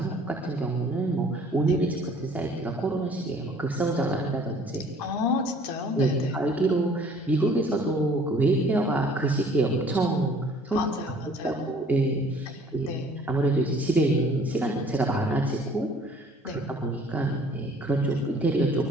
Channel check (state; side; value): normal; both; correlation 0.55